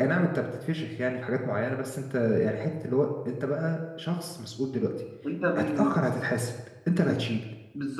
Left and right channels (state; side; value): identical; both; correlation 1.00